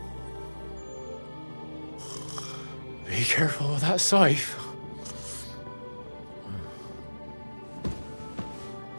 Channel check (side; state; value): both; inverted; correlation -1.00